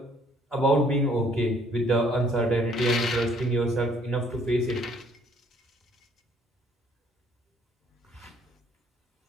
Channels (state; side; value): normal; both; correlation 0.62